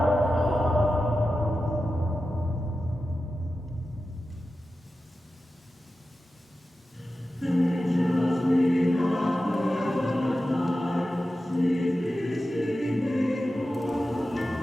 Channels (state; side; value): normal; both; correlation 0.93